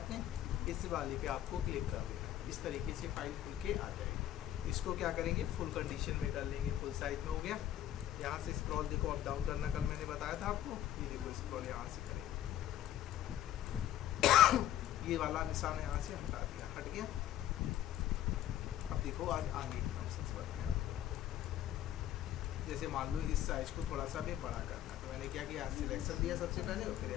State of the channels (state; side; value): quieter; right; 12.2 dB